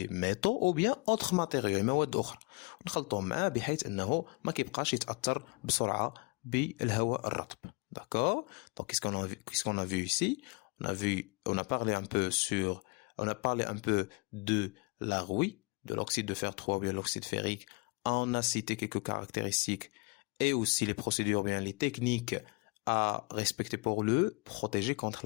ميتو أو بيان autres matériaux مواد أخرى ونخلطوهم معاه بحيث أنه ما كيبقاش يتأثر بسرعة بالهواء الرطب. D'accord? Donc, qu'est-ce qu'on a vu ici? On a parlé un peu de la rouille, de l'oxyde de fer 3 ou bien l'oxyde ferrique. On a cité quelques caractéristiques et aussi les procédures, bien les techniques à respecter pour le protéger contre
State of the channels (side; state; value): right; quieter; 29.1 dB